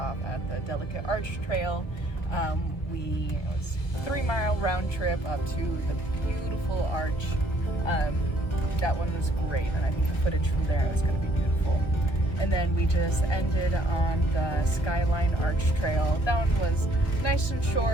at the Delicate Arch Trail. It was a 3-mile round trip up to the beautiful arch. That one was great, and I think the footage from there is going to be beautiful. And then we just ended on the Skyline Arch Trail. That one was nice and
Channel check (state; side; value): late; right; 1.4 ms